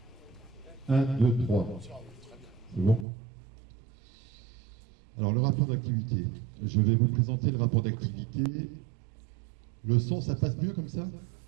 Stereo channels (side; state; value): left; drops out; at 3.1 s